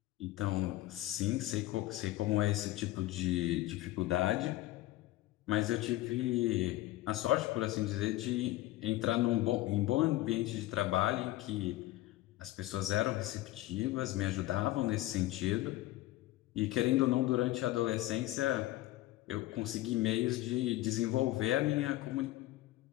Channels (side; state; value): right; quieter; 16.7 dB